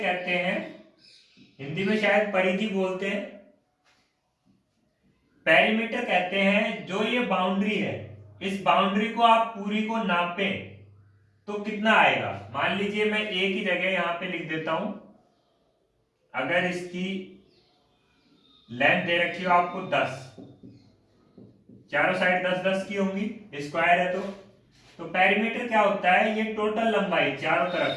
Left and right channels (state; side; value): identical; both; correlation 1.00